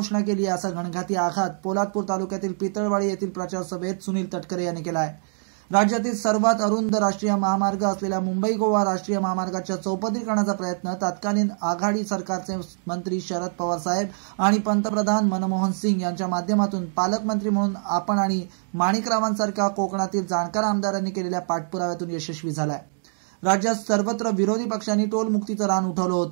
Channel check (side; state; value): left; silent; digital silence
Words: केली असा घणघाती आघात पोलादपूर तालुक्यातील पितळवाडी येथील प्रचार सभेत सुनील तटकरे यांनी केला आहे। राज्यातील सर्वात अरुंद राष्ट्रीय महामार्ग असलेल्या मुंबई गोवा राष्ट्रीय महामार्गाच्या चौपदरीकरणाचा प्रयत्न तत्कालीन आघाडी सरकारचे मंत्री शरद पवार साहेब आणि पंतप्रधान मनमोहन सिंग यांच्या माध्यमातून पालकमंत्री म्हणून आपण आणि माणिकरावांसारख्या कोकणातील जाणकार आमदारांनी केलेल्या पाठपुराव्यातून यशस्वी झाला आहे। राज्यात सर्वत्र विरोधी पक्षांनी टोल मुक्तीचं रान उठवलं